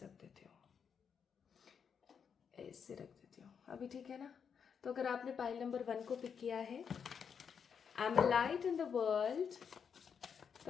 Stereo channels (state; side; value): quieter; right; 6.9 dB